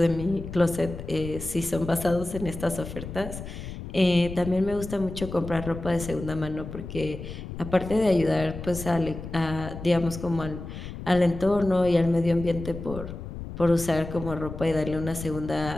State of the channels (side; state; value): left; noise; rumble, 10 dB below the sound